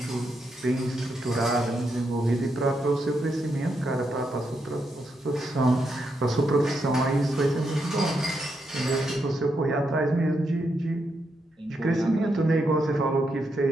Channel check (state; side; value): normal; both; correlation 0.81